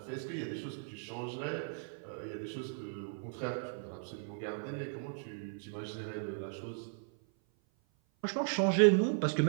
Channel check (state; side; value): silent; left; 53 dB below the other